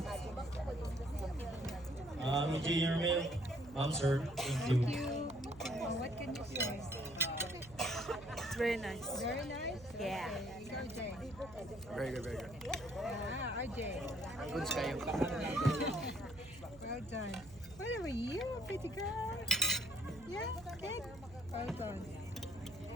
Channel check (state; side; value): noise; right; hum, 19 dB below the sound